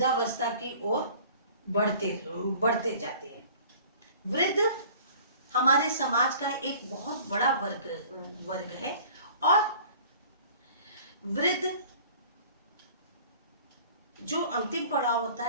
की ओर बढ़ते जाते हैं। वृद्ध हमारे समाज का एक बहुत बड़ा वर्ग है और वृद्ध जो अंतिम पड़ाव होता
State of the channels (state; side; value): inverted; both; correlation -0.48